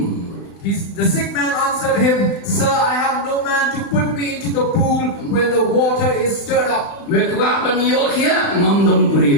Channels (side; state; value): right; late; 35 ms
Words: The sick man answered him, Sir, I have no man to put me into the pool when the water is stirred up. Mekwapan yo kya ngamdon